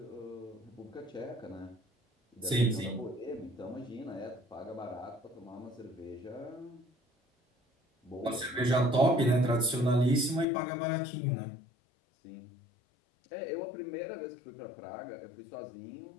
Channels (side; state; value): right; drops out; at 10.5 s